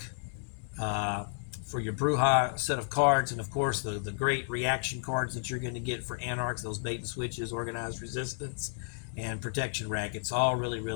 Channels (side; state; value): right; silent; 56 dB below the other